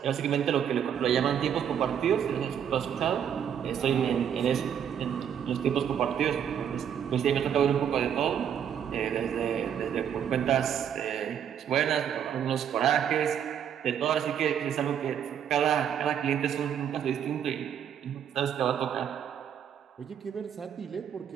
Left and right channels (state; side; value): quieter; left; 8.8 dB